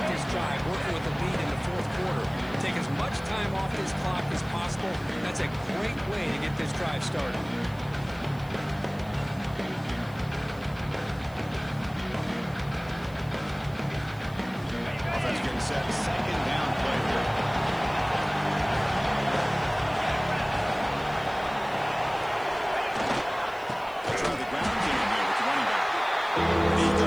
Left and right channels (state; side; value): noise; left; hiss, 25 dB below the sound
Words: this drive, working with the lead in the fourth quarter. Take as much time off this clock as possible. That's a great way to get this drive started. Offense getting set. Second down play here. Try the ground game here with the running back. He